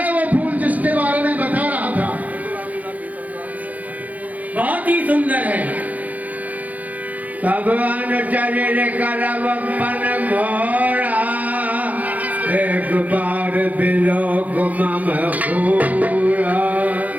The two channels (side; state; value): left; late; 0.077 ms